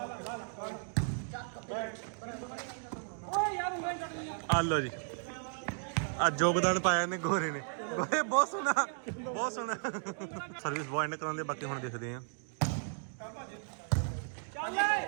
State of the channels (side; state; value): left; silent; 55 dB below the other